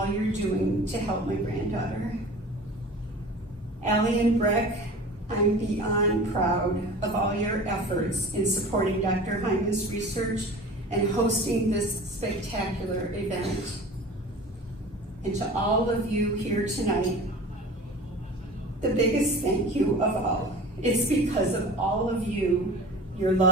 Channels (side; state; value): both; normal; correlation 0.39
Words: you're doing to help my granddaughter. Allie and Breck, I'm beyond proud of all your efforts in supporting Dr. Hyman's research and hosting this spectacular event. And to all of you here tonight, the biggest thank you of all is because of all of you, your